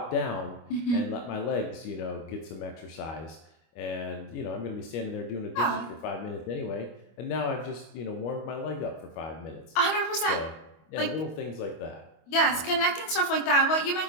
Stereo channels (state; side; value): late; right; 25 ms